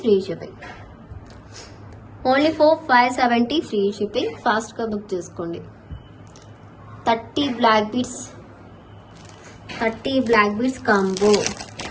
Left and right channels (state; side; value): identical; both; correlation 1.00